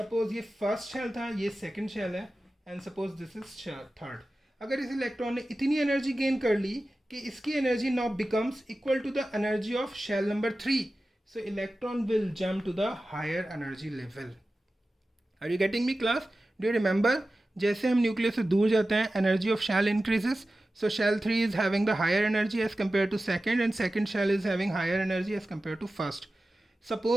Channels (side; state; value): both; normal; correlation 0.95